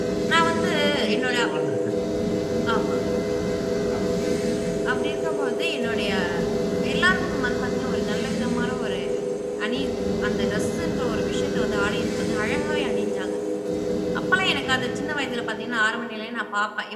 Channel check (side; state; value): both; identical; correlation 1.00